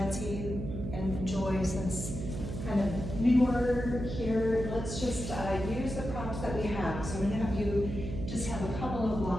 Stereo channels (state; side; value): noise; right; hum, 6 dB below the sound